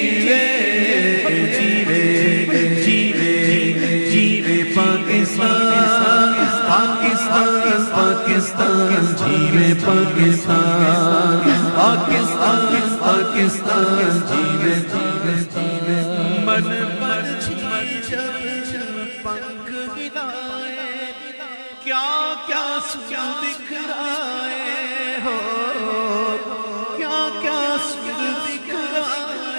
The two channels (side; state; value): both; inverted; correlation -1.00